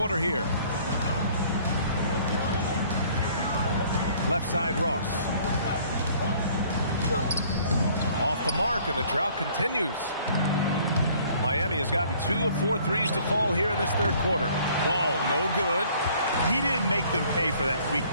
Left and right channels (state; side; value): inverted; both; correlation -0.57